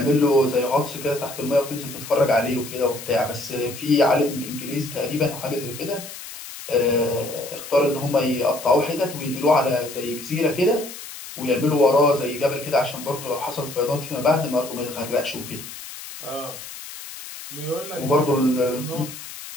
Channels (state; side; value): noise; left; hiss, 12 dB below the sound